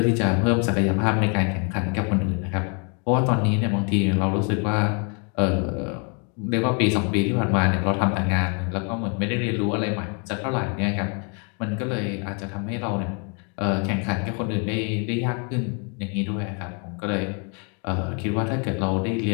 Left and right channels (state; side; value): quieter; right; 37.3 dB